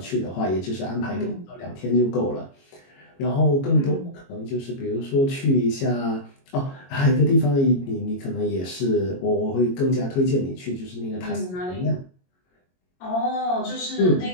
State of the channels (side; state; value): right; late; 22 ms